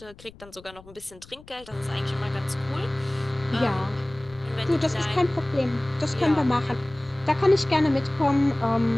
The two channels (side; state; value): left; noise; rumble, 23 dB below the sound